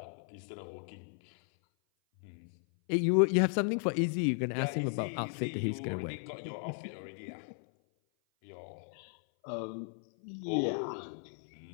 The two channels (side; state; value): right; silent; 54 dB below the other